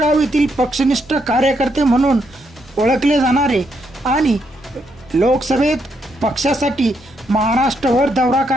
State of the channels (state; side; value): normal; both; correlation 0.77